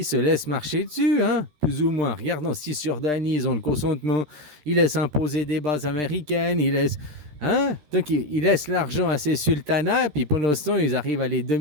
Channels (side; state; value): left; late; 13 ms